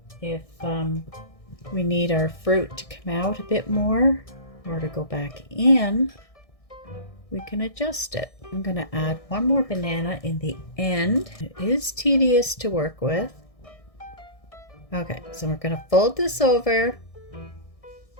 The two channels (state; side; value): late; right; 1.6 ms